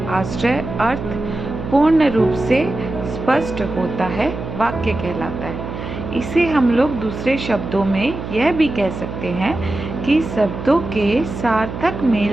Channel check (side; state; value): right; noise; hum, 8 dB below the sound